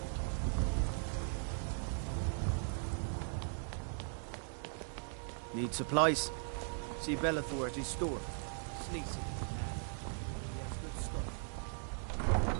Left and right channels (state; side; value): silent; left; 52 dB below the other